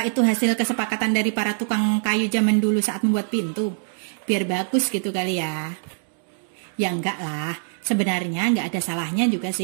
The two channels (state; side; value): silent; left; 63 dB below the other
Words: itu hasil kesepakatan dari para tukang kayu zaman dulu saat membuat pintu? Biar bagus gitu kali ya. Ya enggak lah, sebenarnya nggak ada salahnya juga